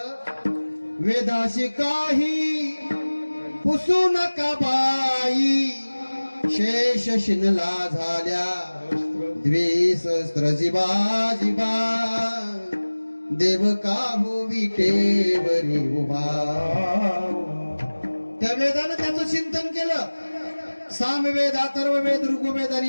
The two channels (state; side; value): inverted; both; correlation -1.00